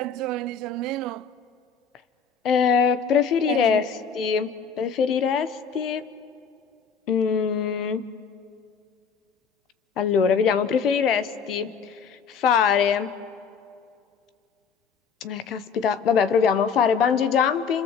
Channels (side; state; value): right; quieter; 6.0 dB